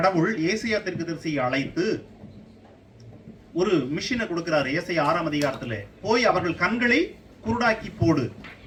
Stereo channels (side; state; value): both; identical; correlation 1.00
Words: ஏசாயா தீர்க்கதரிசியை அழைத்து ஒரு மிஷினை கொடுக்கிறார். ஏசாயா 6ஆம் அதிகாரத்தில் போய் அவர்கள் கண்களை குருடாக்கி போடு,